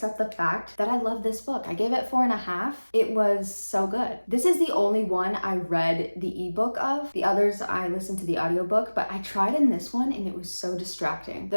the fact that I love this book. I gave it 4.5. It was so good. This is the only one I read the ebook of. The others I listened to the audiobook, but I tried in this one and it was so distracting.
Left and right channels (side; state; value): both; inverted; correlation -1.00